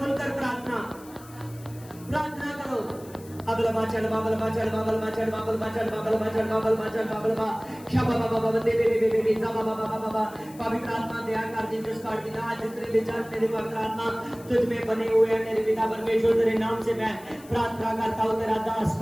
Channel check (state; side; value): noise; left; hiss, 22 dB below the sound